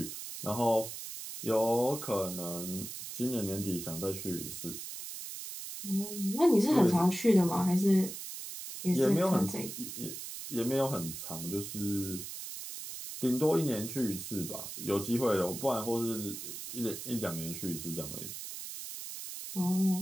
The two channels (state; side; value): noise; right; hiss, 9 dB below the sound